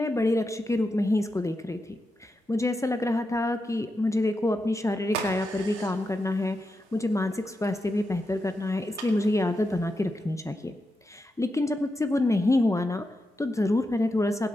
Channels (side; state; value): both; normal; correlation 0.87